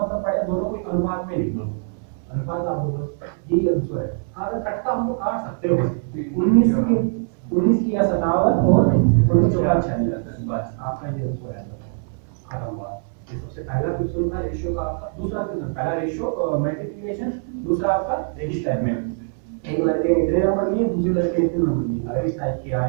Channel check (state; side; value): silent; left; 64 dB below the other